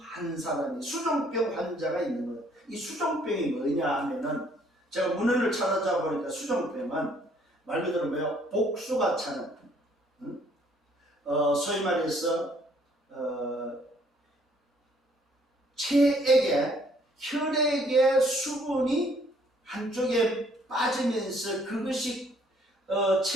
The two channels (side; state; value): both; normal; correlation 0.63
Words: 사람이, 수종병 환자가 있는 거예요. 이 수종병이 뭐냐 하면은, 제가 문헌을 찾아보니까 보니까 수종병은 말 그대로 뭐예요? 복수가 차는, 소위 말해서 혈액의 수분이 한쪽에 빠지면서 그것이